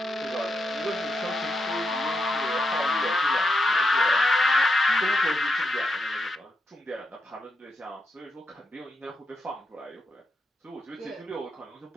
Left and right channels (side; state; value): both; normal; correlation 0.84